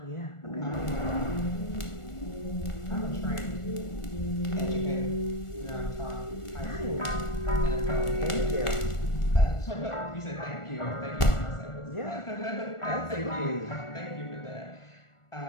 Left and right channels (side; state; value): right; late; 1.4 ms